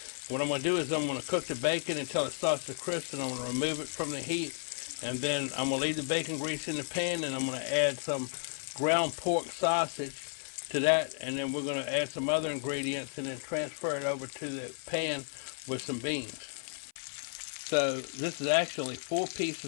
What I'm going to do is I'm going to cook the bacon until it starts to crisp, and I'm going to remove it from the heat. And then I'm going to leave the bacon grease in the pan, and I'm going to add some ground pork sausage to that, and then we're going to add some other ingredients and then transfer it over to the pan with some beans. So this is actually 4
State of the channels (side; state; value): right; silent; 56 dB below the other